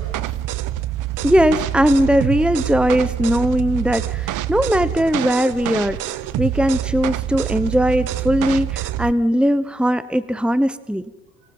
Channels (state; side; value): normal; both; correlation 0.85